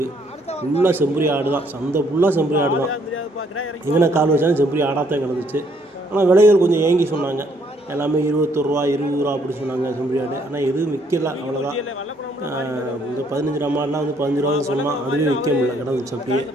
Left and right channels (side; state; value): both; normal; correlation 0.67